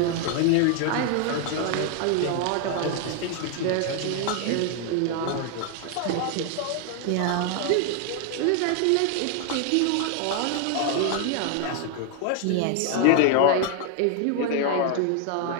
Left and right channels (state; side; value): different; both; correlation 0.00